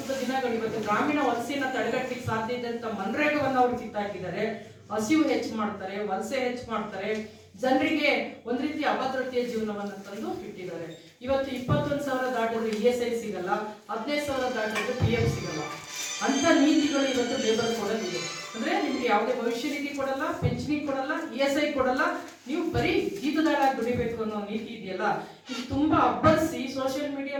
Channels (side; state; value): both; identical; correlation 1.00